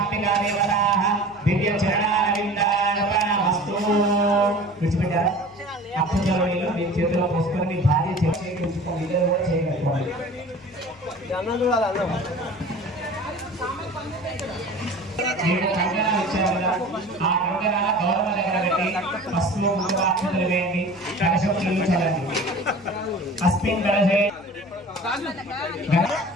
దేవతాః దివ్య చరణారవిందార్పణమస్తు. విడిచిపెట్టారా? అక్షతలో నీళ్లు మీ చేతిలో పోసుకొని మీ భార్య చేయించుకోండి, ఇద్దరు కూడా చేయగలుగుకోండి. మీరు కంకణాలు ఇచ్చారు కదా, ఆ కంకణాల గౌరవ దగ్గర పెట్టి పసుపు ముందుగా అక్షతలు వేయండి, కలశం నీళ్ళు చల్లండి. అస్మిన్ కలశే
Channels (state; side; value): noise; left; hum, 27 dB below the sound